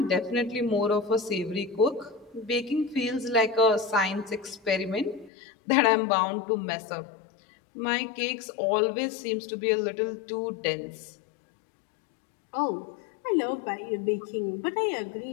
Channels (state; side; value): drops out; right; at 5.3 s